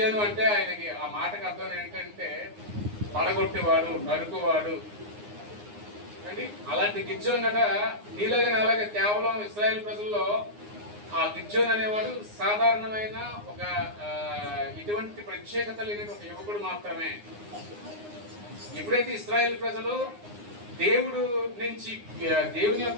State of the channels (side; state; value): left; late; 9.7 ms